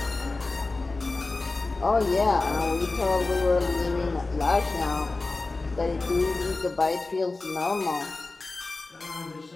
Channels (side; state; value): right; quieter; 3.4 dB